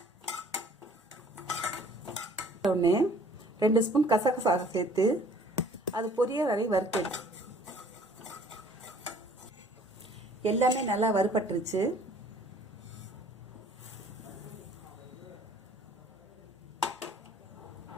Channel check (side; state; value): both; normal; correlation 0.55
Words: உடனே 2 ஸ்பூன் கசகசா சேர்த்து அது பொரிய வரை வறுத்து எல்லாமே நல்லா வறுபட்டுருச்சு.